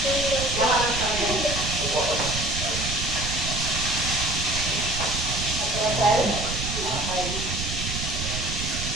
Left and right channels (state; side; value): noise; right; rumble, 5 dB below the sound